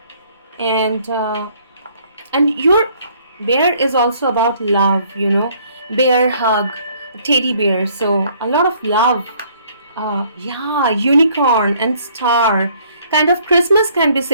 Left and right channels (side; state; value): both; inverted; correlation -0.62